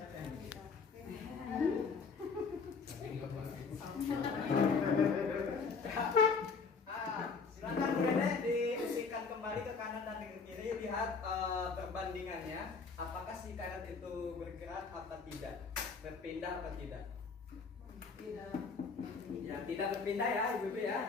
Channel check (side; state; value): right; quieter; 5.0 dB